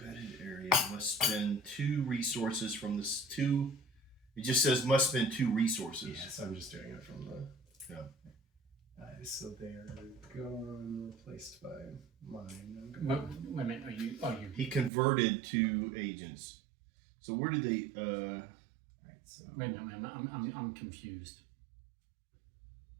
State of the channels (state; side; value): drops out; left; at 14.9 s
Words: area must spend 2 resources from this 2. It just says must spend 2 resources. Yeah, so I'm just doing it from the. Yeah. So they're gone, replaced by mine. Wait a minute. Are you? He converted 2 agents. So where did they? Alright, so. Wait a minute. I'm confused.